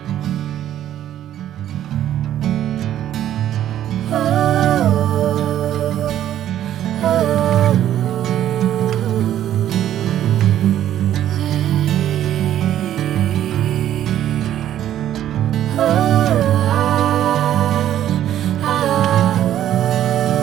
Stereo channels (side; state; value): left; quieter; 11.6 dB